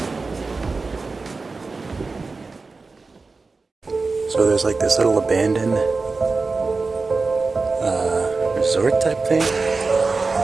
So there's like this little abandoned resort type thing.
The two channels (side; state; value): left; quieter; 4.0 dB